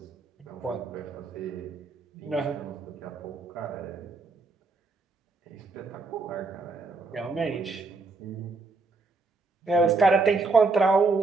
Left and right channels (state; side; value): quieter; left; 3.8 dB